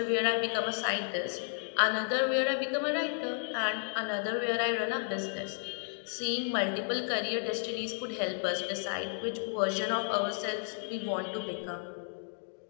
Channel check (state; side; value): silent; right; 56 dB below the other